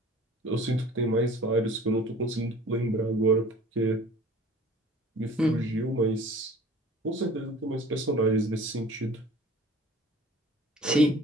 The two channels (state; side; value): normal; both; correlation 0.46